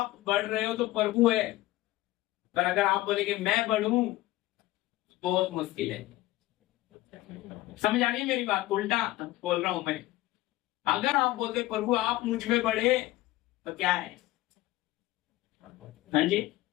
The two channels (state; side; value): quieter; right; 17.3 dB